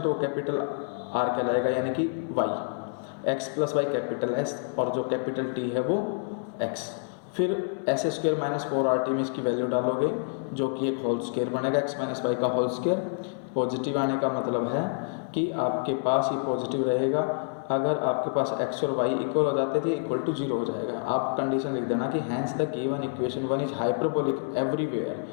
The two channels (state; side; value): silent; right; digital silence